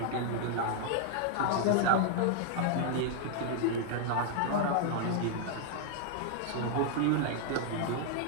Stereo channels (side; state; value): both; different; correlation 0.00